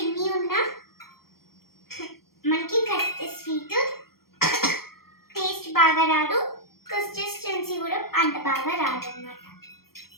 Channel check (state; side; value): late; right; 0.94 ms